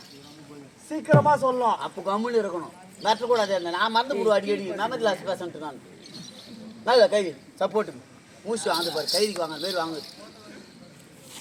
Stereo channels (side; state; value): both; identical; correlation 1.00